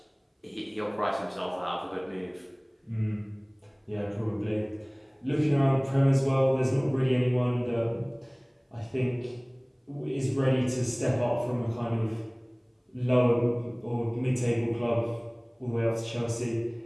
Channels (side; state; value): both; identical; correlation 1.00